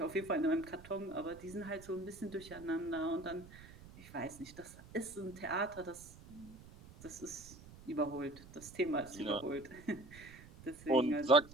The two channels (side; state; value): right; noise; rumble, 18 dB below the sound